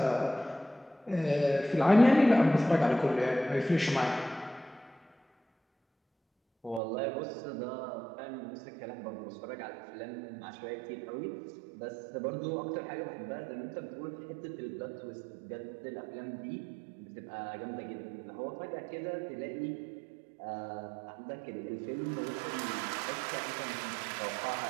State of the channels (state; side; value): drops out; left; at 6.8 s